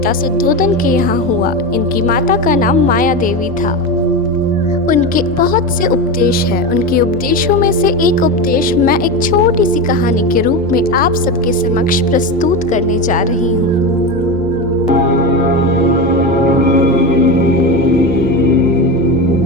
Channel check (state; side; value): normal; both; correlation 0.19